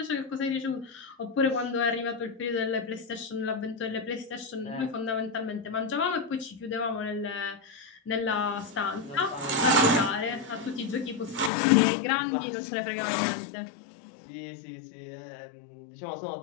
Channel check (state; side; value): drops out; right; at 11.5 s